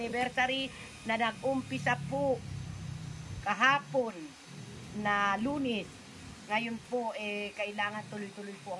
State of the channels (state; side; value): identical; both; correlation 1.00